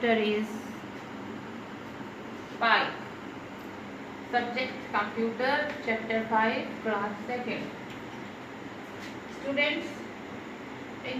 is 5. Subject computer, chapter 5, class 2nd. Students,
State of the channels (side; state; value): both; identical; correlation 1.00